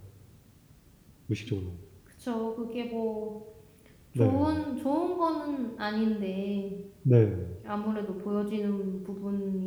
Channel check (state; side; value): identical; both; correlation 1.00